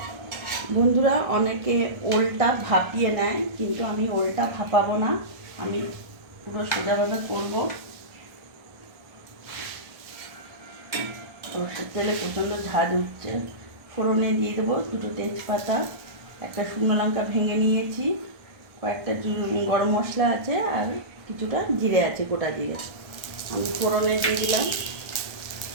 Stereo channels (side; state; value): left; late; 1.4 ms